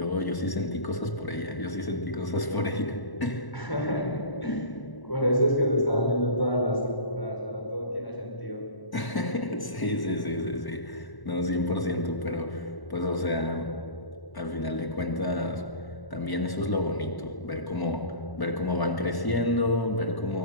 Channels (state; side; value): late; right; 1.0 ms